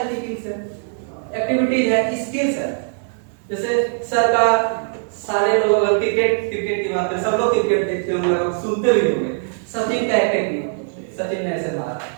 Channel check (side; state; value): left; silent; digital silence